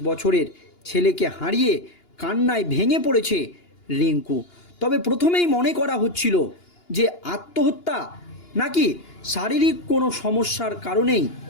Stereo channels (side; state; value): right; late; 2.9 ms